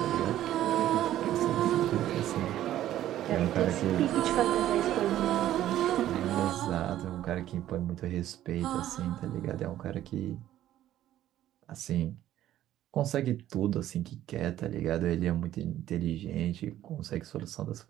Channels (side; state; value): left; quieter; 12.8 dB